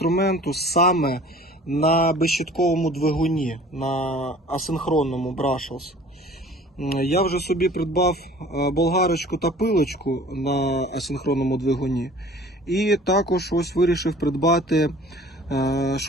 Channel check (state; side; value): normal; both; correlation 0.48